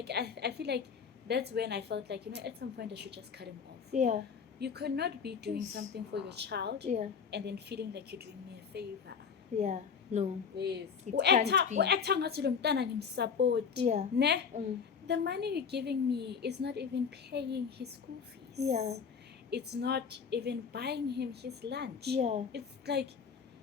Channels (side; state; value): right; quieter; 6.3 dB